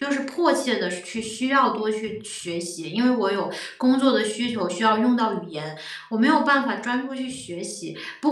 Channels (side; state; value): both; identical; correlation 1.00